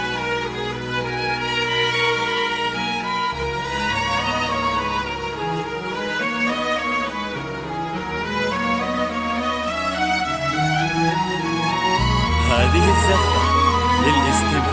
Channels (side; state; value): both; identical; correlation 1.00